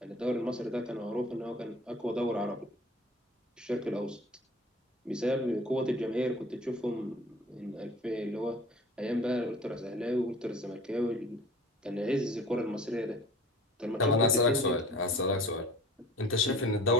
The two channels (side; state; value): both; normal; correlation 0.44